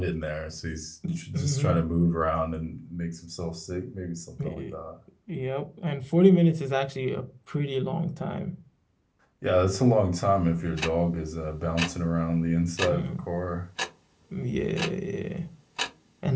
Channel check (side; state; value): both; identical; correlation 1.00